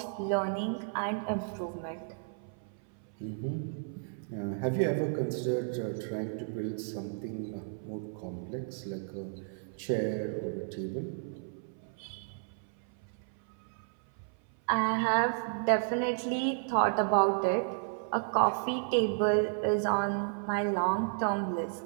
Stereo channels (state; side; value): silent; left; 56 dB below the other